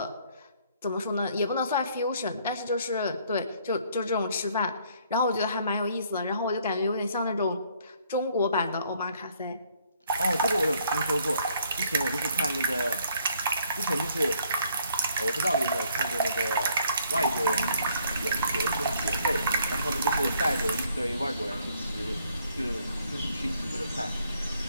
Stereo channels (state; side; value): inverted; both; correlation -0.65